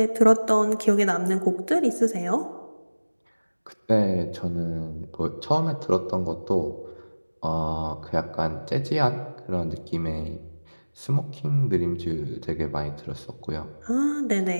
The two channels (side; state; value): both; inverted; correlation -1.00